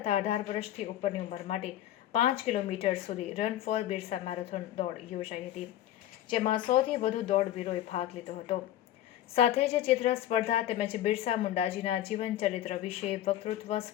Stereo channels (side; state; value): right; quieter; 12.6 dB